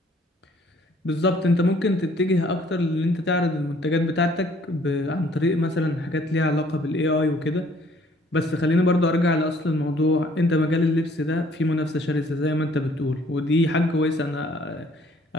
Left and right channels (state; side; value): normal; both; correlation 0.60